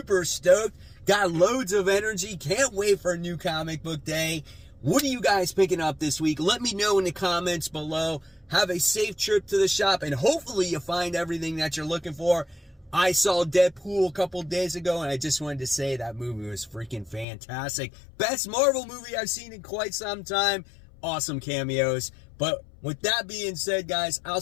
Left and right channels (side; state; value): right; drops out; at 17.2 s